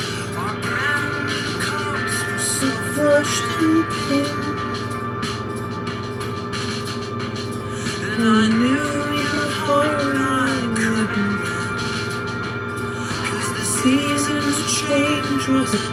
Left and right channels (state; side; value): identical; both; correlation 1.00